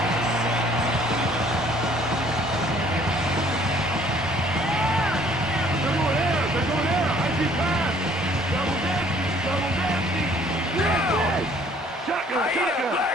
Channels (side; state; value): both; normal; correlation 0.58